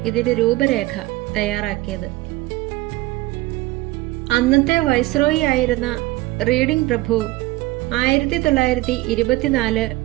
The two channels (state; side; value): quieter; left; 19.5 dB